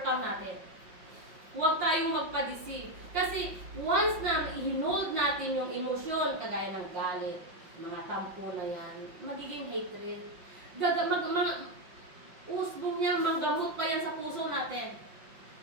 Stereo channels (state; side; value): late; left; 5.5 ms